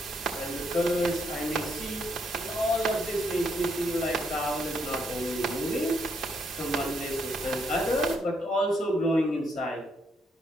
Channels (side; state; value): both; normal; correlation 0.75